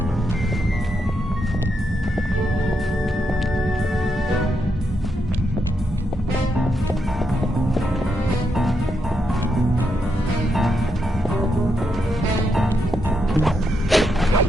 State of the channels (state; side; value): normal; both; correlation 0.82